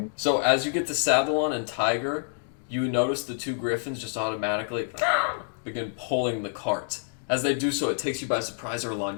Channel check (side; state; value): right; silent; digital silence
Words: So as you get the saddle on and Tiger, you notice the 2 griffins just automatically begin pulling the cart. As they do so, it takes you by surprise, Erland.